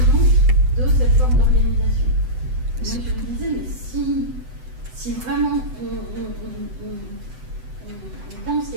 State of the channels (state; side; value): late; left; 7.9 ms